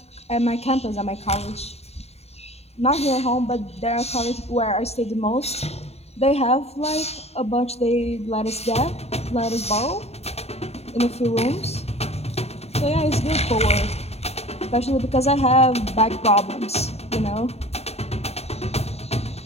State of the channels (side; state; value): right; late; 0.30 ms